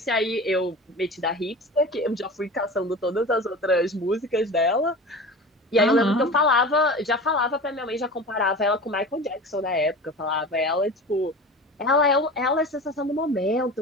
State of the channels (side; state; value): both; normal; correlation 0.34